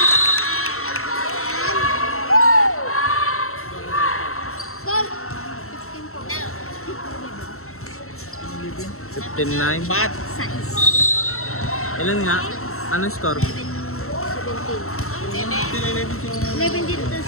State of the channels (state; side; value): late; right; 0.63 ms